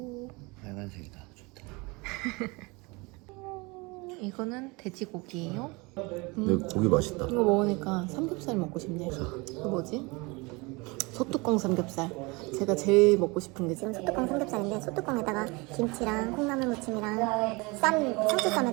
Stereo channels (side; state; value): left; quieter; 26.3 dB